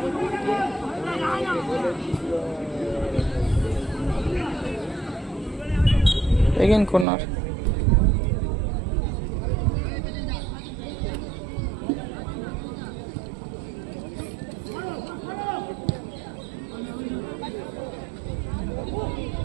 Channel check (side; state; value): left; drops out; at 7.1 s